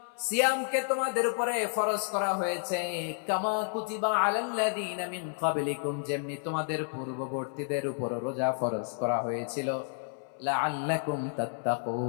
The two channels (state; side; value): silent; right; 57 dB below the other